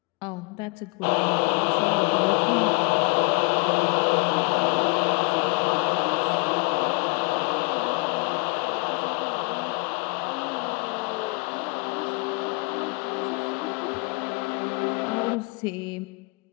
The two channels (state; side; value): quieter; right; 32.0 dB